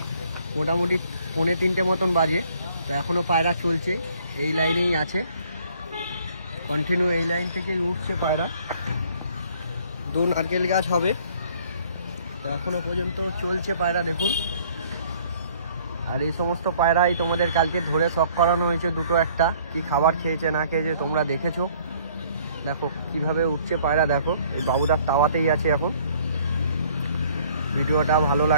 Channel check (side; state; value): both; inverted; correlation -0.59